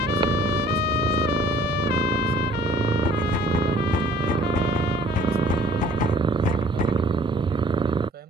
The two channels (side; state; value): both; normal; correlation 0.55